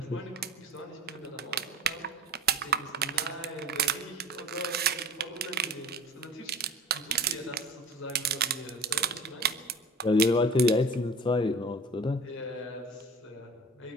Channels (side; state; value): both; normal; correlation 0.41